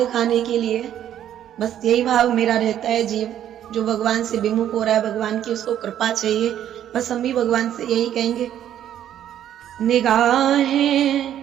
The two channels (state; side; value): quieter; left; 10.8 dB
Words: के लिए बस यही भाव मेरा रहता है। जीव जो भगवान से विमुख हो रहा है, भगवान की उसको कृपा चाहिए। बस हम भी भगवान से यही कहेंगे, निगाहें